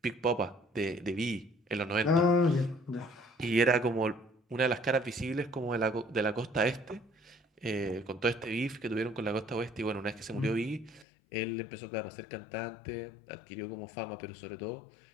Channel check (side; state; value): right; drops out; at 11.1 s